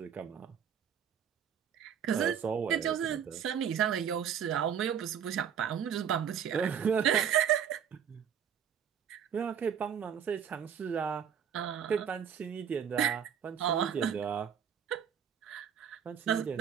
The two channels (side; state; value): left; quieter; 8.2 dB